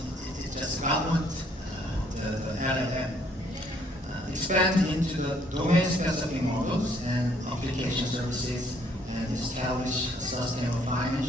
It's just government, the LLM. Expand into the domain-specific models and application services, and establish a sustainable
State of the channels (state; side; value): normal; both; correlation 0.65